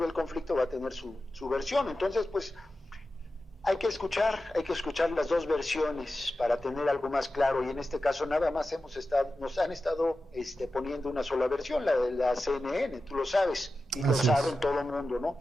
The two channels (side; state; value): both; normal; correlation 0.93